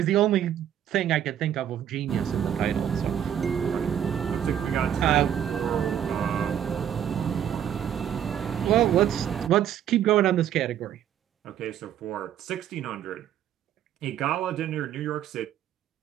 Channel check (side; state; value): left; quieter; 9.9 dB